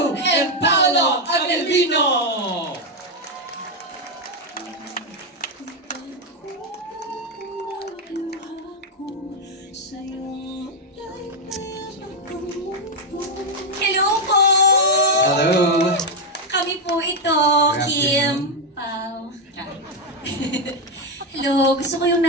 and Paolo Avellino. Hello po! Hello! Kami po ito, Kim, Pao. Hello, gusto ko yung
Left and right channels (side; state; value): both; normal; correlation 0.04